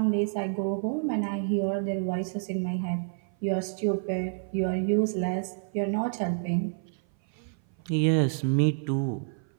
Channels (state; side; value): silent; left; 56 dB below the other